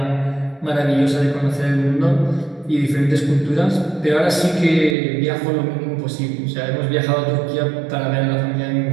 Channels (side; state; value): left; drops out; at 5.0 s